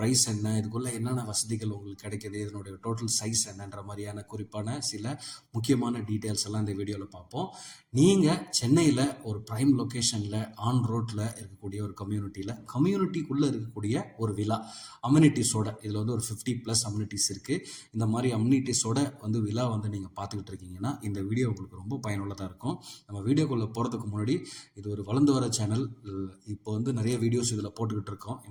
என்ன, இதுக்குள்ளே என்னென்ன வசதிகள் உங்களுக்கு கிடைக்கிது, இதனுடைய டோட்டல் சைஸ் என்னன்ற மாதிரியான குறிப்பான சில முக்கியமான டீட்டெயில்ஸ் எல்லாம் இந்த வீடியோவில் பார்ப்போம். நீங்கள் சென்னையில் ஒரு ப்ரைம் லொக்கேஷனில் ஆன் ரோட்டில் இருக்கக்கூடிய ஒரு கம்யூனிட்டிக்குள்ளே இருக்கக்கூடிய ஒரு விலா அம்யூனிட்டிஸோட, இதில் வந்து ஒரு 50+ அம்யூனிட்டிஸ் இருக்குது. இந்த மாதிரி அம்யூனிட்டிஸோட வந்து விலா வந்து நீங்கள் பார்த்துக்கிட்டு இருக்கீங்கன்னா இந்த வீடியோ உங்களுக்கு ரொம்ப பயனுள்ளதாக இருக்கும். நம்ம வீடியோக்குள்ளே போகிறதுக்கு முன்னாடி, இது ஒரு வளர்ந்து வர சேனல். இப்போ வந்து நிறைய வீடியோஸ் இதில் போட்டுக்கிட்டு இருக்கோம்,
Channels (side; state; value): both; identical; correlation 1.00